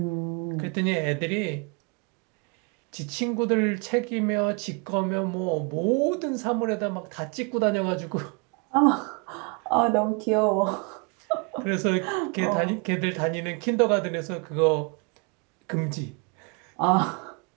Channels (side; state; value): left; quieter; 32.6 dB